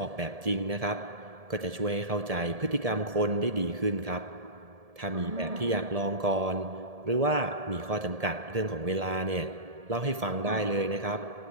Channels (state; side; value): late; left; 1.7 ms